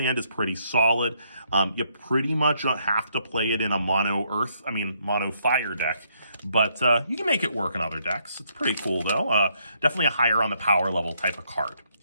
is pretty solid. You pretty much have to play it in a mono fire deck. But you can make it work in other decks. It's pretty cool, though. Definitely a higher on the power level type of card.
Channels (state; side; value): inverted; both; correlation -0.72